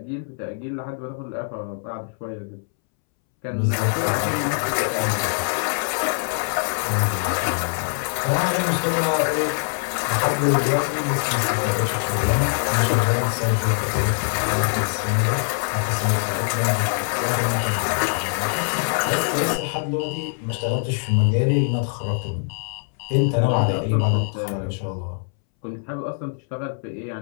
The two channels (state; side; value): silent; right; 63 dB below the other